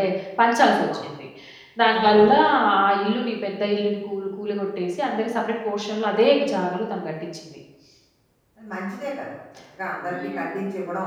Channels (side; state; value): both; identical; correlation 1.00